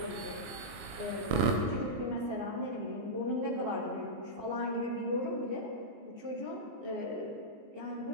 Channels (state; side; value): late; left; 19 ms